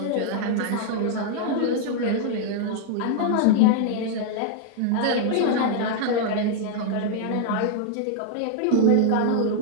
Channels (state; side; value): different; both; correlation 0.00